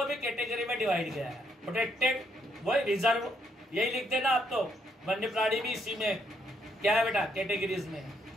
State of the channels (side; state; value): both; normal; correlation 0.74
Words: भी कैटेगरी में डिवाइड किया है, प्रोटेक्टेड, वही रिजर्व, यही लिख देना आप तो। वन्य प्राणी भी इसी में क्या है बेटा, कैटेगरीज में।